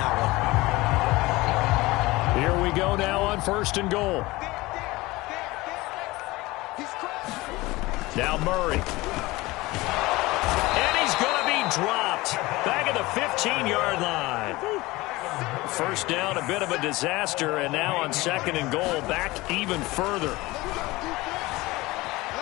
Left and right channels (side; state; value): right; quieter; 20.6 dB